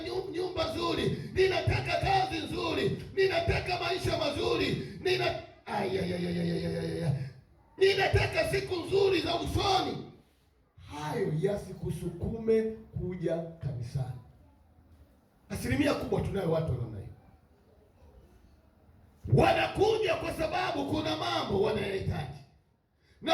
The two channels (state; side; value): identical; both; correlation 1.00